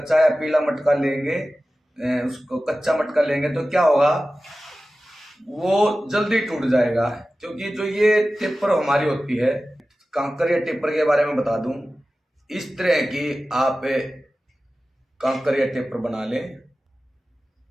या पीला मटका लेंगे, उसको कच्चा मटका लेंगे तो क्या होगा, वो जल्दी टूट जाएगा। क्योंकि जो ये टेपर हमारी होती है, कांकर या टेपर के बारे में बता दूं, इस तरह की आप कांकर या टेपर बना लें।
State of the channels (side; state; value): both; normal; correlation 0.95